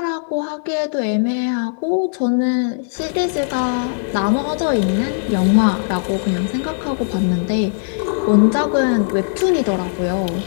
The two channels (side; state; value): right; silent; digital silence